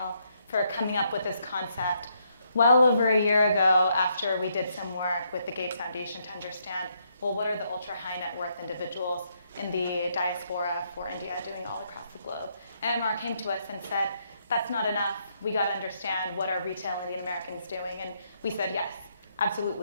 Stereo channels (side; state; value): both; inverted; correlation -0.75